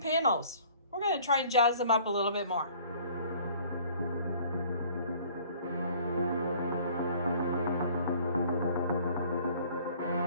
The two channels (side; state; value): both; inverted; correlation -0.54